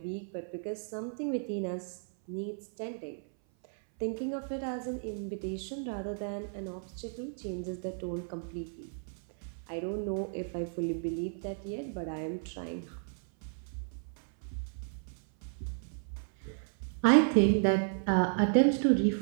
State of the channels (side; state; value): left; silent; 55 dB below the other